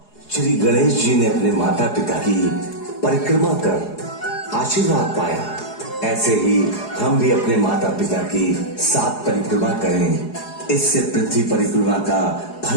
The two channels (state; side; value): late; right; 4.8 ms